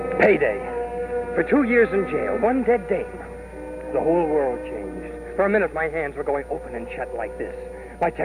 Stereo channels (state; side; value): identical; both; correlation 1.00